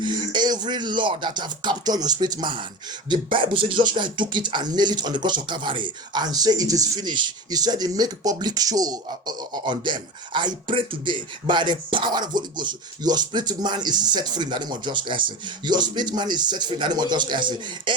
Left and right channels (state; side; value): normal; both; correlation 0.27